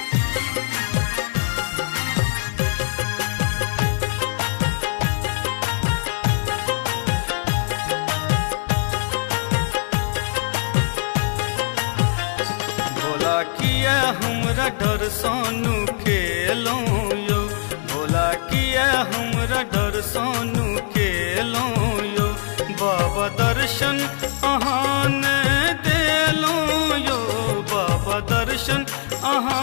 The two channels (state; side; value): silent; right; digital silence